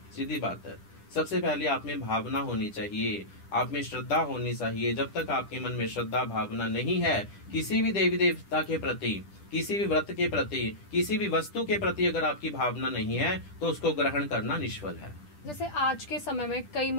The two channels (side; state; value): right; late; 10 ms